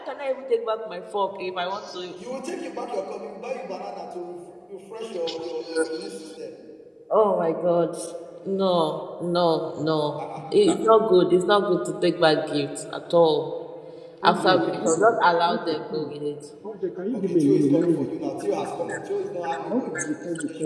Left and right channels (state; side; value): identical; both; correlation 1.00